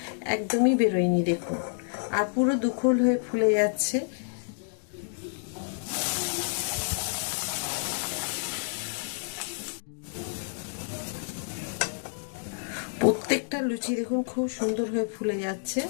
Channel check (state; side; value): silent; right; digital silence